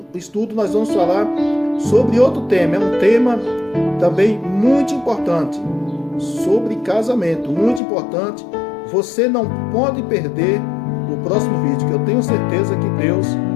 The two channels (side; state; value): right; drops out; at 7.8 s